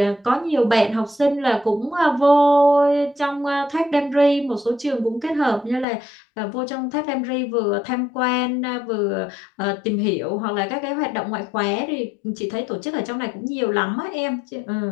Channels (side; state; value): right; drops out; at 5.9 s